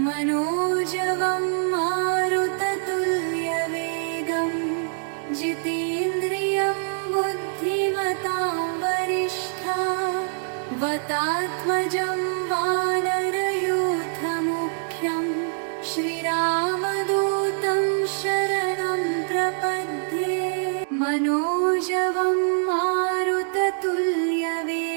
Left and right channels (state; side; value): silent; left; digital silence